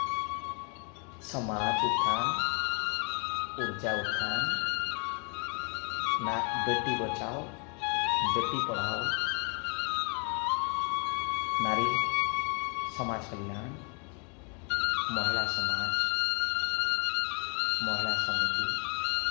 समाज उत्थान, ऊर्जा उत्थान, ना बेटी बचाओ बेटी पढ़ाओ, नारी समाज कल्याण, महिला समाज, महिला समिति,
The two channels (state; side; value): quieter; right; 36.5 dB